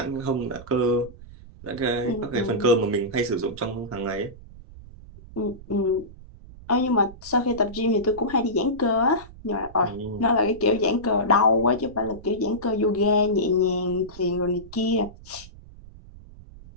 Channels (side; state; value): right; noise; rumble, 18 dB below the sound